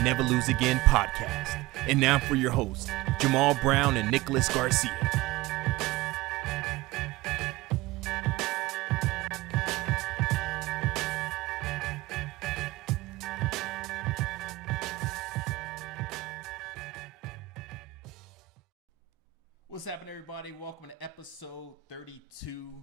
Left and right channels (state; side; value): quieter; left; 18.4 dB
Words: Never Lose Again podcast. And now for your hosts, Jamal Brown and Nicholas Garcia. What's happening, everybody? Welcome to episode